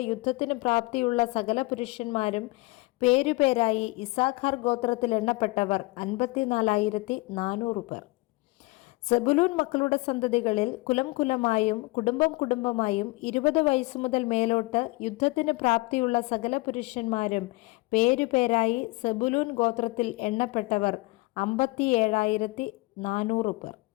യുദ്ധത്തിന് പ്രാപ്തിയുള്ള സകല പുരുഷന്മാരും പേരുപേരായി ഇസാഖാർ ഗോത്രത്തിൽ എണ്ണപ്പെട്ടവർ 54,400 പേർ. സെബുലൂൻ മക്കളുടെ സന്തതികളിൽ കുലം കുലമായും കുടുംബം കുടുംബമായും 20 വയസ്സു മുതൽ മേലോട്ട് യുദ്ധത്തിന് പ്രാപ്തിയുള്ള സകല പുരുഷന്മാരും പേരുപേരായി സെബുലൂൻ ഗോത്രത്തിൽ എണ്ണപ്പെട്ടവർ 57,400 പേർ.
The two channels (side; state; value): right; quieter; 23.5 dB